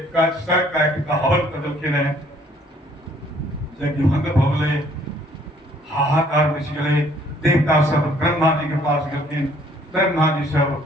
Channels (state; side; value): normal; both; correlation 0.61